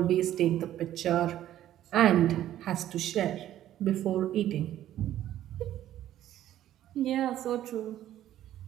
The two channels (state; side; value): quieter; left; 12.4 dB